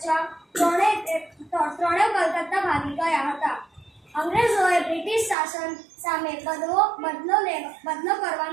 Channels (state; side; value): drops out; left; at 5.4 s